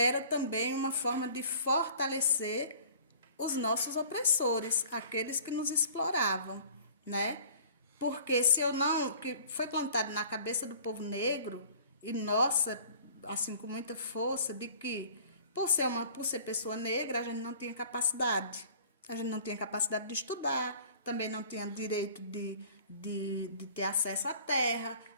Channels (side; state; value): both; inverted; correlation -0.48